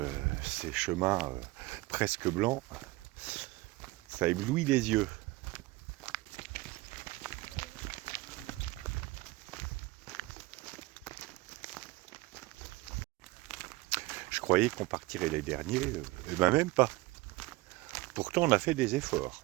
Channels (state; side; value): quieter; left; 21.0 dB